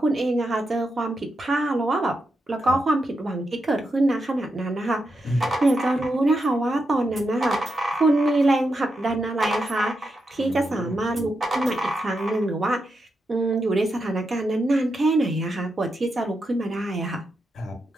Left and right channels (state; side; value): normal; both; correlation 0.86